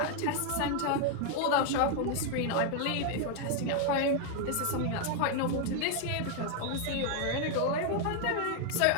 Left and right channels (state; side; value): different; both; correlation 0.00